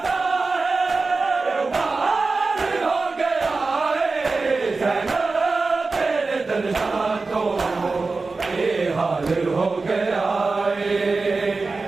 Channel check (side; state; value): left; quieter; 3.9 dB